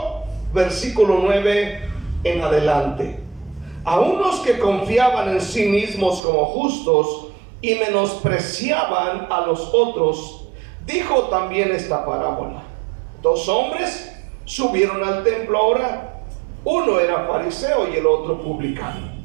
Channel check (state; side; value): drops out; left; at 6.2 s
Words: versículo 9 en adelante. A unos que confiaban en sí mismos como justos y menospreciaban a los otros, dijo también esta parábola. Dos hombres subieron al templo a orar. Uno era fariseo y el otro publicano.